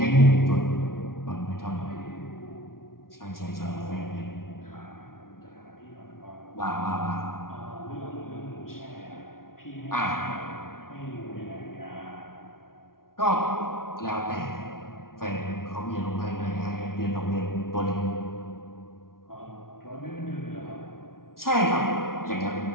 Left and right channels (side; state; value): right; late; 0.93 ms